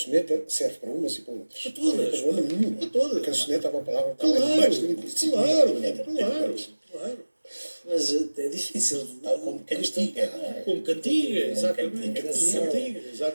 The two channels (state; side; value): inverted; both; correlation -1.00